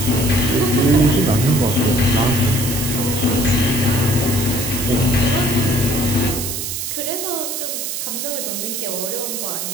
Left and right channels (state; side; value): noise; right; hiss, 4 dB below the sound